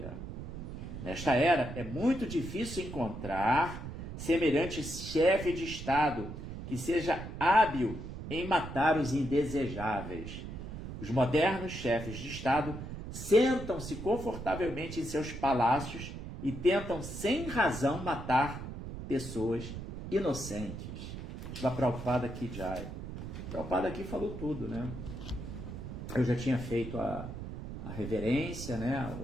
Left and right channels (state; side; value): noise; right; rumble, 8 dB below the sound